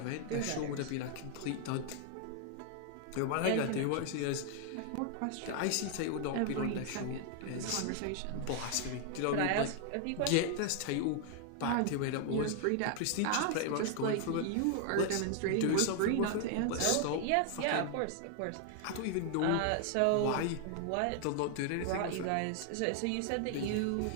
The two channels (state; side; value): different; both; correlation 0.00